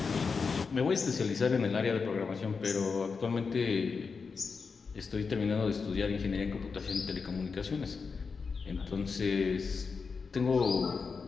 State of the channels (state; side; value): quieter; right; 5.1 dB